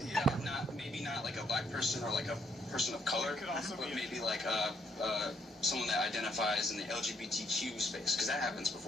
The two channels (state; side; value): normal; both; correlation 0.72